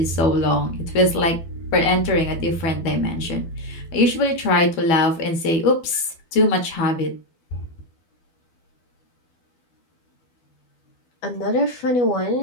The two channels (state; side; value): late; right; 12 ms